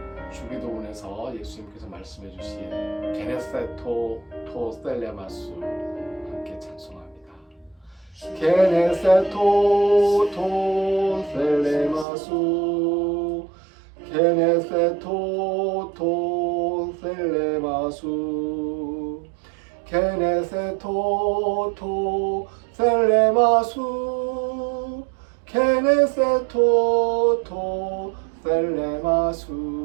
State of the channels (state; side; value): drops out; left; at 12.1 s